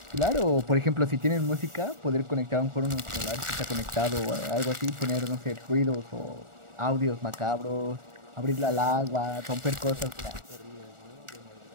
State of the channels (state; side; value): late; left; 1.4 ms